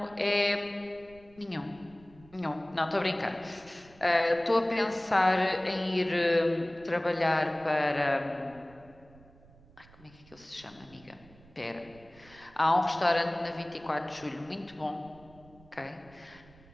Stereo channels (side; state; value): right; noise; rumble, 25 dB below the sound